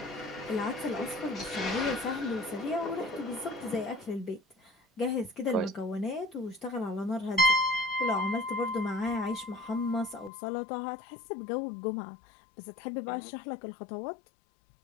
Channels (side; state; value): right; drops out; at 10.3 s